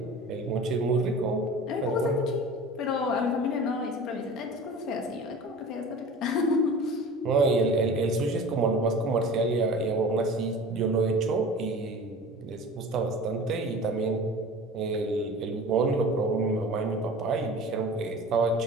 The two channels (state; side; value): normal; both; correlation 0.39